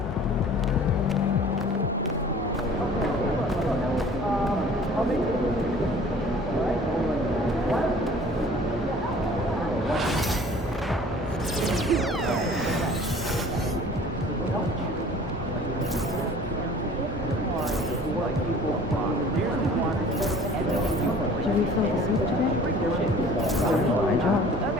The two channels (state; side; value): normal; both; correlation 0.49